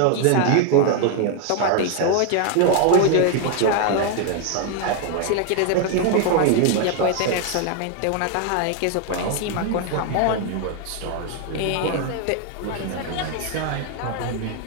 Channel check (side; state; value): both; different; correlation 0.00